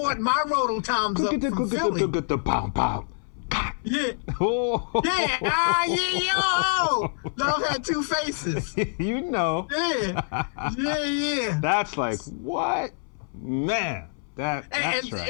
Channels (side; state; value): right; silent; 61 dB below the other